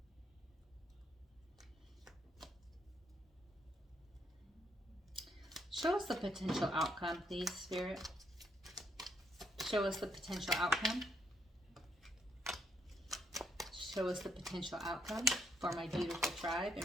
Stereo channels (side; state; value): both; normal; correlation 0.73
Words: Show us the potential outcome, please, Spirit. Show us the potential outcome. Show us the potential outcome for my beautiful tribe